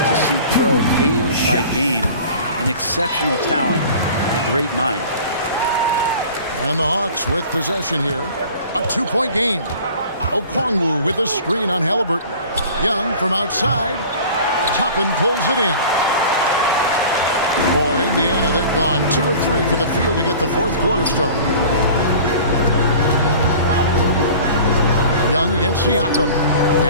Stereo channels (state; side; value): inverted; both; correlation -0.43